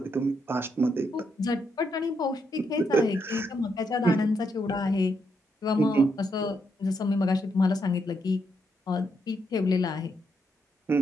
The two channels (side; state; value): both; normal; correlation 0.79